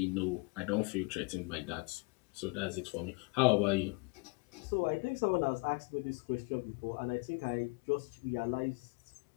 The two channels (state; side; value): quieter; right; 30.3 dB